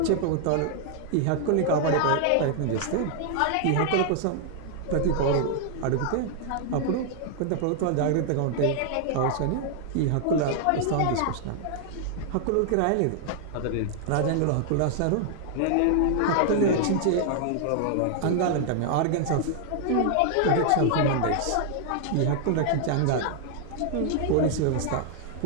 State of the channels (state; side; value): different; both; correlation 0.00